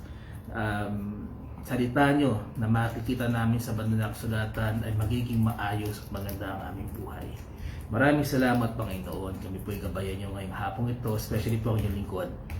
salita nyo na makikita namin sa banal na kasulatan, ay magiging maayos at maganda ang aming buhay. Maraming salamat, Panginoon. Kami po ay gabayan nyo ngayong hapong ito, especially po ang inyong lingkod,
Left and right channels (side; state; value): both; identical; correlation 1.00